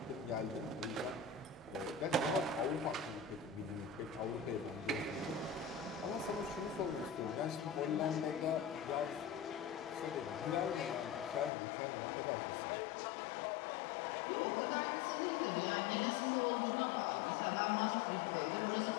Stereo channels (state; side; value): drops out; right; at 11.5 s